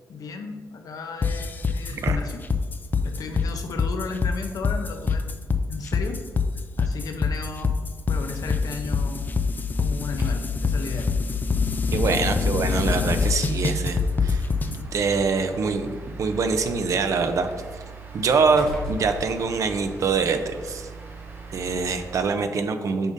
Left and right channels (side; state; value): both; normal; correlation 0.65